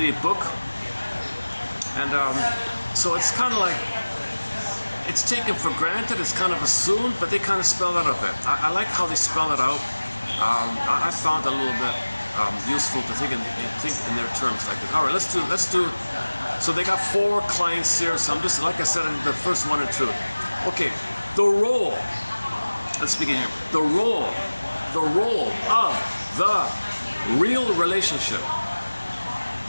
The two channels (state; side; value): inverted; both; correlation -1.00